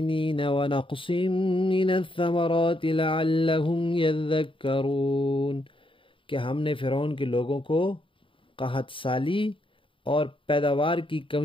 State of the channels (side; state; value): right; late; 0.25 ms